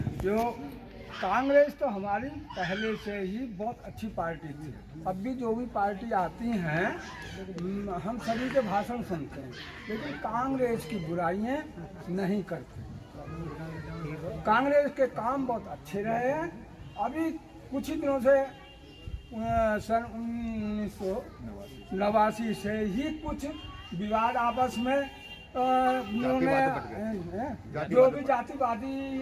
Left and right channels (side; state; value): both; identical; correlation 1.00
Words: जो कांग्रेस तो हमारी पहले से ही बहुत अच्छी पार्टी थी। अब भी जो भी पार्टी आती हैं हम सभी के भाषण सुनते हैं, लेकिन कांग्रेस की बुराइयां नहीं करते। कांग्रेस के काम बहुत अच्छे रहे हैं। अभी कुछ ही दिनों से सन 1989 से ही कुछ विवाद आपस में उन्होंने जो भी जातिवादी